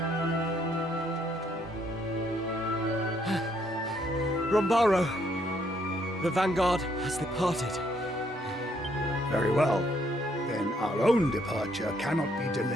Rombaro, the Vanguard has departed. Very well. Then our own departure cannot be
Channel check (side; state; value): both; normal; correlation 0.70